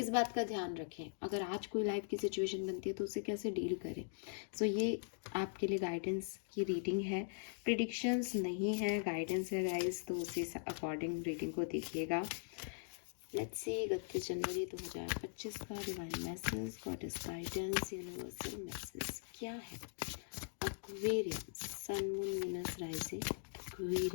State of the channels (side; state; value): right; silent; digital silence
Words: बात का ध्यान रखें, अगर आज कोई लाइफ की सिचुएशन बनती है तो उसे कैसे डील करें। सो ये आपके लिए गाइडेंस की रीडिंग है, प्रिडिक्शंस नहीं है, गाइडेंस है गाइस, तो उसी अकॉर्डिंग रीडिंग को देखिएगा। लेट्स सी 31 जनवरी 2025 का divine message, goddess guidance, universal message क्या है। Aquarians, sun moon Venus rising